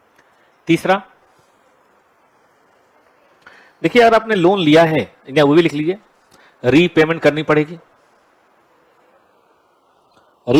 तीसरा, देखिए अगर आपने लोन लिया है, या वो भी लिख लीजिए, रीपेमेंट करनी पड़ेगी,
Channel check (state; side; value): identical; both; correlation 1.00